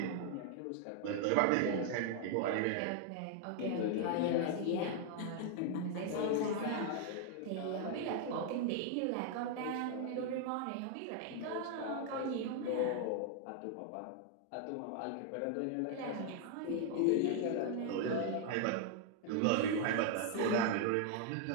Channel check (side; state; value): both; different; correlation 0.00